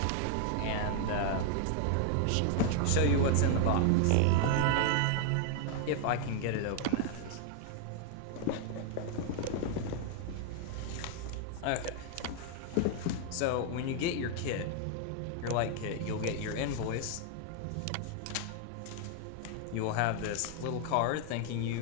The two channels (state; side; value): different; both; correlation 0.00